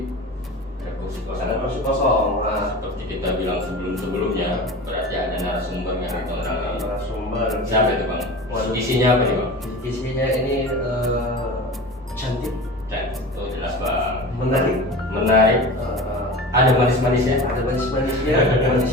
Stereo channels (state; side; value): normal; both; correlation 0.33